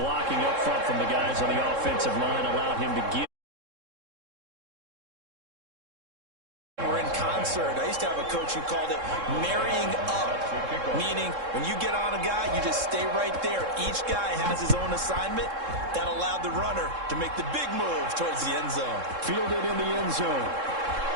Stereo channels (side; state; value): left; late; 3.7 ms